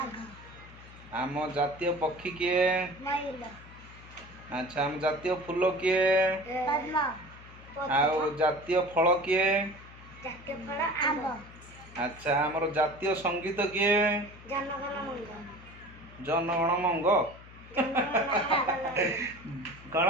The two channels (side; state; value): left; noise; hum, 19 dB below the sound